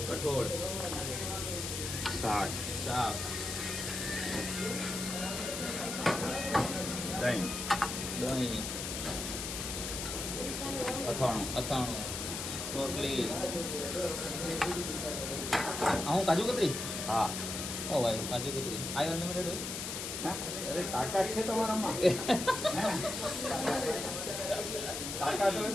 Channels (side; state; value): left; noise; hiss, 4 dB below the sound